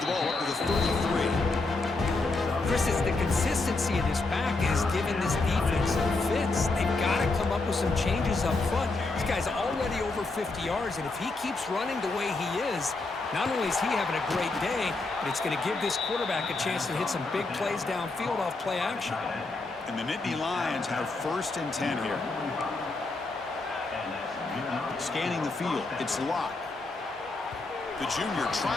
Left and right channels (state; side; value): quieter; right; 3.4 dB